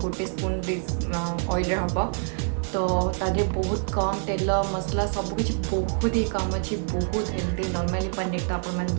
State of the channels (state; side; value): silent; left; 57 dB below the other